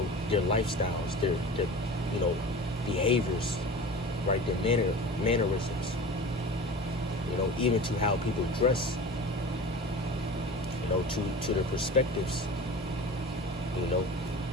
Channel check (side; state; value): both; normal; correlation 0.36